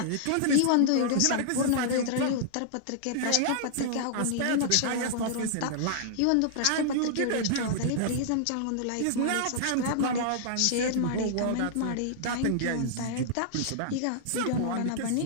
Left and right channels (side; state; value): both; different; correlation -0.01